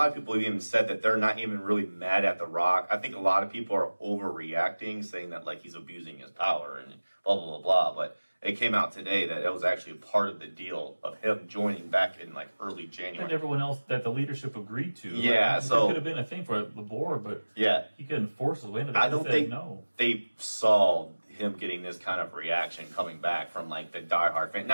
of people have even said that they're not even really mad at The Rock. I think a lot of people are overreacting, saying that like he's abusing his power and blah, blah, blah, blah. But it came out today that it was actually part of the deal of him joining back in like early January. And everyone else that the leadership agreed to. Yeah, like, so it could have been a thing for the board, but yeah, he couldn't force his way into that. I don't think no. they saw him getting this kind of reaction coming back from like the diehard fan.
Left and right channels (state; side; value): inverted; both; correlation -1.00